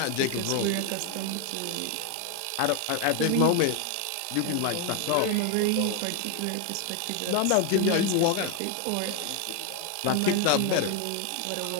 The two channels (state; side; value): different; both; correlation 0.01